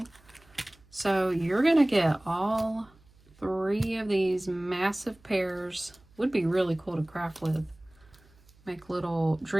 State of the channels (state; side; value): noise; right; hum, 29 dB below the sound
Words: So you're gonna get all 3 of these massive pairs. Would be really cool to craft with. Make little